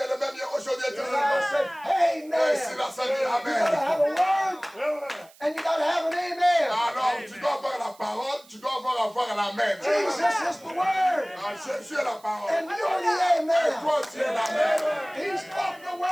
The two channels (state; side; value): noise; right; hiss, 26 dB below the sound